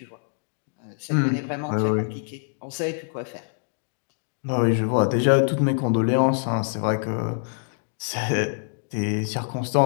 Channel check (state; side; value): silent; right; digital silence